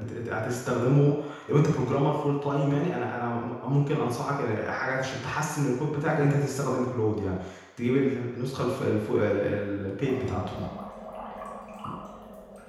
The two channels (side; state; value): both; identical; correlation 1.00